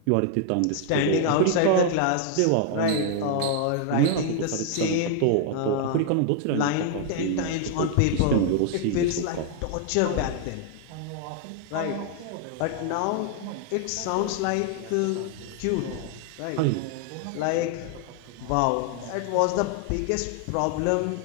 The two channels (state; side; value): different; both; correlation 0.00